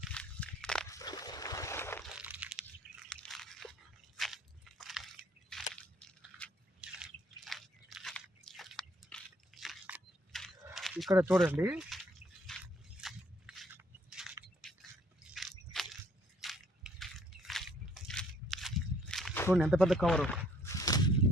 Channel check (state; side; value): normal; both; correlation 0.62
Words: ఇక్కడ చూడండి, చూడండి ఎంత పెద్ద కవరు.